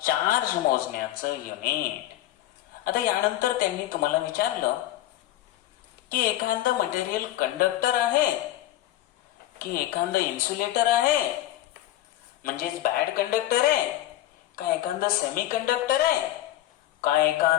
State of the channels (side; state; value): right; quieter; 14.4 dB